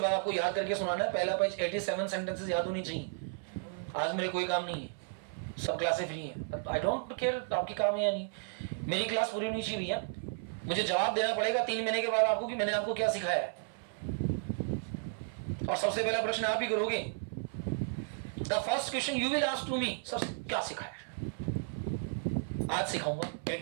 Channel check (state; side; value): silent; left; 55 dB below the other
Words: बाद आपको याद करके सुनाना है। पहला पेज 87 सेंटेंसेस याद होनी चाहिए। आज मेरे कोई काम नहीं है, सब क्लासें फ्री हैं। आई डोंट केयर आपकी काम है या नहीं, मेरी क्लास पूरी होनी चाहिए भैया। मुझे जवाब देना पड़ेगा 3 महीने के बाद आपको कि मैंने आपको क्या सिखाया है। और सबसे पहला प्रश्न आप ही करोगे। The first question you will ask to me, sir क्या सिखाया है? आज सिखाऊंगा